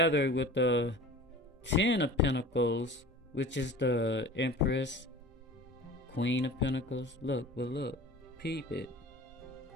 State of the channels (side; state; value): both; normal; correlation 0.39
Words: with the 10 of Pentacles, which is the Empress, Queen of Pentacles. Look, peep it.